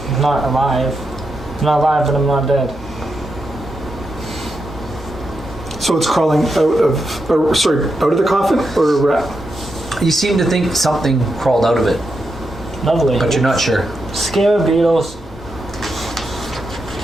not alive. I'm not alive, but I'm not dead. So it's crawling out of the coffin or around? You seem to think something crawled out of it, Lovely. but you're not sure. Scare beetles.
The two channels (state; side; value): normal; both; correlation 0.85